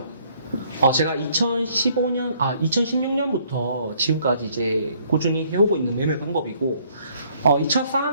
제가 2016년부터 지금까지 이제 꾸준히 해오고 있는 매매 방법이고, 이 첫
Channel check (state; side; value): inverted; both; correlation -0.64